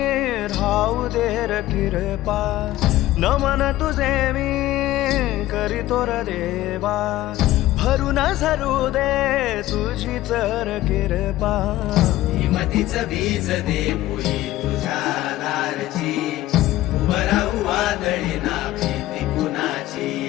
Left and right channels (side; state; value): right; quieter; 15.6 dB